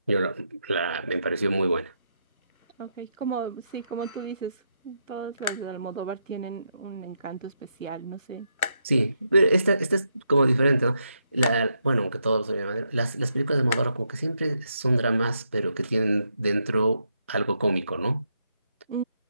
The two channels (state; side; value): inverted; both; correlation -0.81